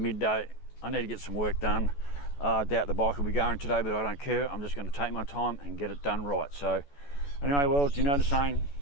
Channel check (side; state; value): right; late; 14 ms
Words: I need to get some work done. I doubt the bike will be going today, but I don't care. I'm just going to take my time and get it done right. So anyway, well, you know the saying,